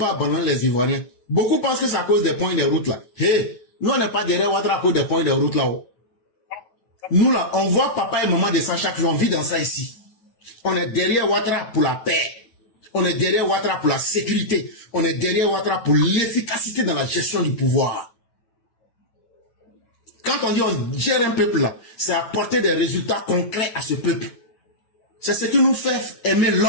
abandonner les Ivoiriens. Beaucoup pensent que c'est à cause des points de route là. Hey, nous on n'est pas derrière Ouattara à cause des points de route là-haut. Nous là, on voit papa et maman de ça chaque jour, on vit dans ça ici. On est derrière Ouattara pour la paix. On est derrière Ouattara pour la sécurité. On est derrière Ouattara pour l'efficacité dans la gestion du pouvoir. Quand on dit on gère un peuple là, c'est apporter des résultats concrets à ce peuple. C'est ce qui nous fait aimer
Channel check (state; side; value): late; right; 9.2 ms